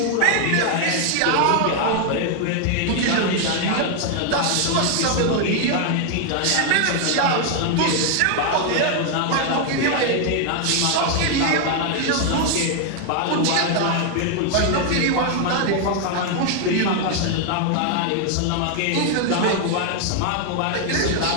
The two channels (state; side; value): different; both; correlation 0.00